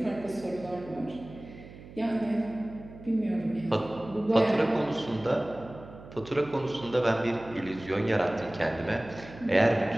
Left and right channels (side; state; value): right; noise; hum, 17 dB below the sound